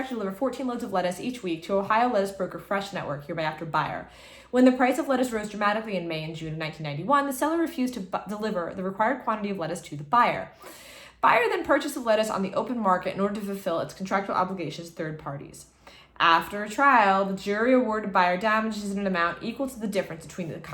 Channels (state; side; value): identical; both; correlation 1.00